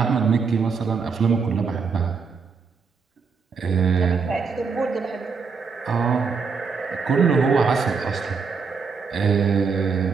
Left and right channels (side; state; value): left; quieter; 5.3 dB